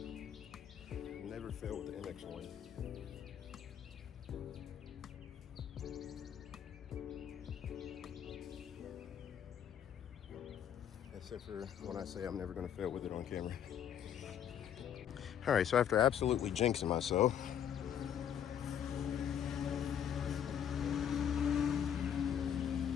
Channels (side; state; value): right; quieter; 9.1 dB